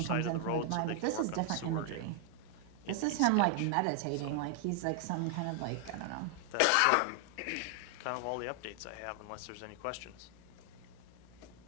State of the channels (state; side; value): different; both; correlation 0.00